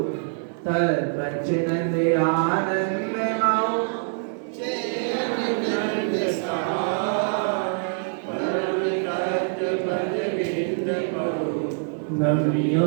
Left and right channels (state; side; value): silent; left; 61 dB below the other